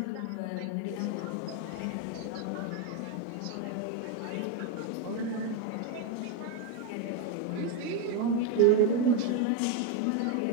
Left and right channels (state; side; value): different; both; correlation 0.02